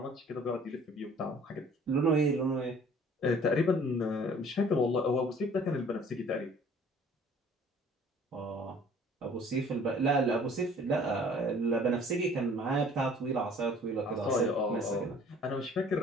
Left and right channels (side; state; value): both; normal; correlation 0.53